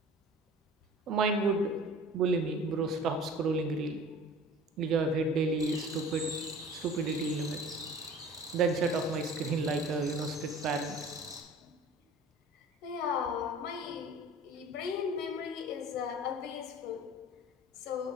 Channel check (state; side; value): normal; both; correlation 0.43